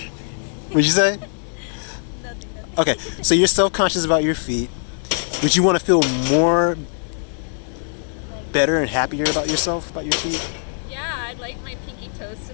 Would you say? Nothing. Okay. So you're self-conscious about your feet. Would you want to feel more better and happier about yourself, about your feet? Yeah, I'd like my pinky toes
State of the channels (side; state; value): right; silent; digital silence